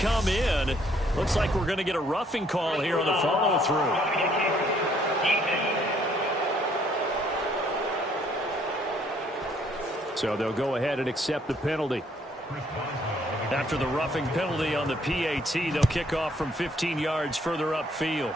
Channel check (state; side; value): normal; both; correlation 0.65